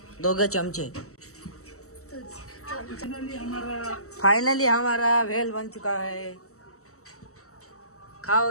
2 चमचे. फाइनली हमारा भेल बन चुका है.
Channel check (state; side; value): late; right; 0.64 ms